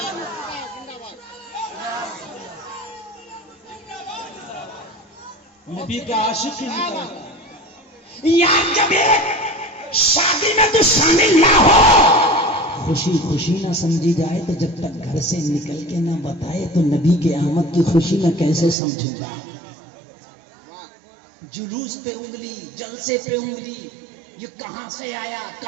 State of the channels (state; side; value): drops out; left; at 18.8 s